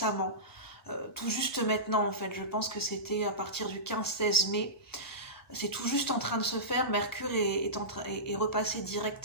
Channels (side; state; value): both; normal; correlation -0.19